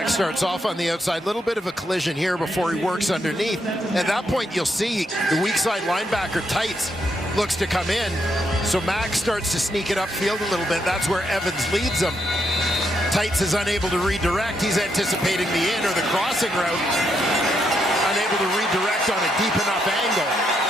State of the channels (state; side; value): normal; both; correlation 0.79